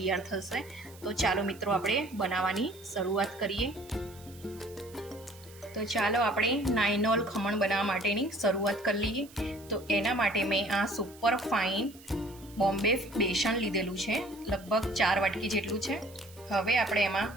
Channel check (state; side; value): noise; right; hiss, 22 dB below the sound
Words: થશે. તો ચાલો મિત્રો, આપણે બનાવવાની શરૂઆત કરીએ. તો ચાલો આપણે નાયનોલ ખમણ બનાવવા માટેની શરૂઆત કરી લઈએ. તો એના માટે મેં આ સુપર ફાઇન બોમ્બે બેસન લીધેલું છે, લગભગ 4 વાટકી જેટલું છે. હવે આપણે એમાં